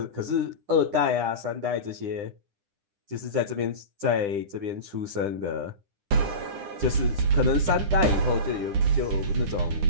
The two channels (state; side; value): late; left; 9.9 ms